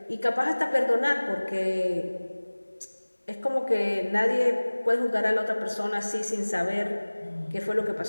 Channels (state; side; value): inverted; both; correlation -1.00